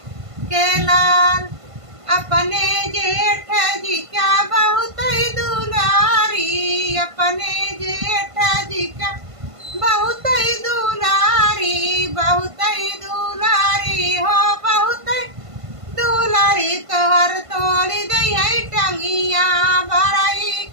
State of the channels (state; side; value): late; left; 1.5 ms